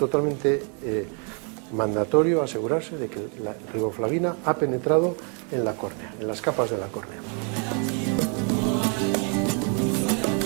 mandatorio asegurarse de que la riboflavina ha penetrado en la córnea, en las capas de la córnea.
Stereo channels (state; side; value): quieter; left; 39.1 dB